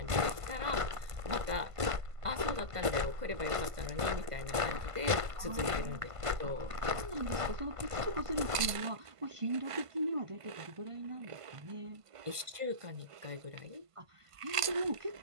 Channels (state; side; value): late; left; 1.5 ms